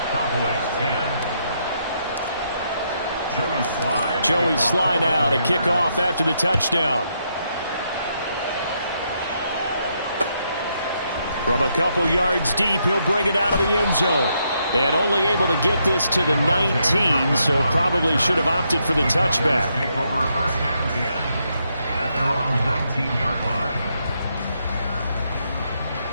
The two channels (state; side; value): inverted; both; correlation -0.77